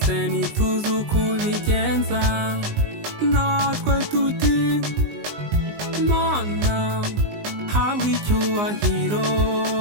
ntituzi uko ubigenza, natwe tuti Mana habwa icyubahiro,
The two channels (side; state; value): left; late; 19 ms